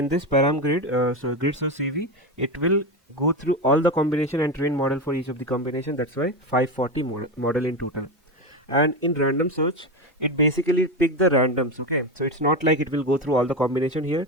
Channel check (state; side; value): normal; both; correlation 0.17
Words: this param grid, so grid search CV, it will go through all the combination and train model for each of the combination. That's why 540 model in total. And in random search, it basically pick the randoms. Okay, so it's not like it will go through all the combination here.